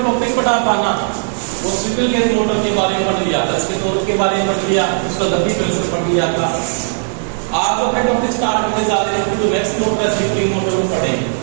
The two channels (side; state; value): left; silent; digital silence